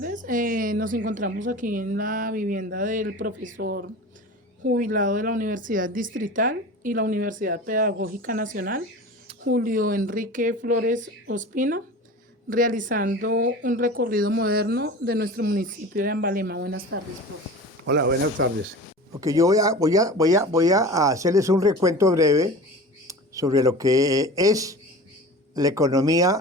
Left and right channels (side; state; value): both; normal; correlation 0.36